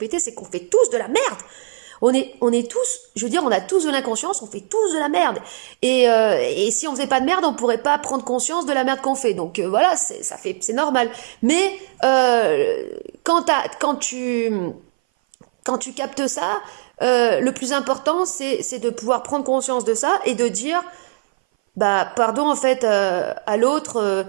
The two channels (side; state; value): left; silent; 60 dB below the other